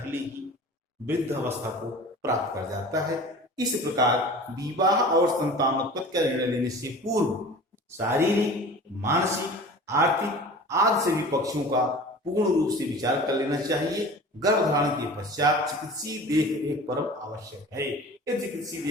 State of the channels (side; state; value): both; normal; correlation 0.40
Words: ही वृद्ध अवस्था को प्राप्त कर जाता है। इस प्रकार विवाह और संतानोत्पत्ति का निर्णय लेने से पूर्व शारीरिक, मानसिक, आर्थिक आदि सभी पक्षों का पूर्ण रूप से विचार कर लेना चाहिए। गर्भधारण के पश्चात चिकित्सीय देखरेख परम आवश्यक है। यदि चिकित्सीय